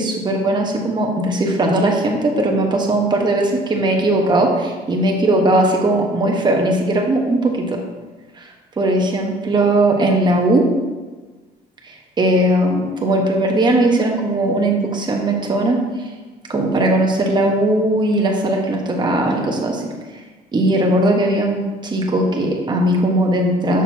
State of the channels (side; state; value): both; normal; correlation 0.54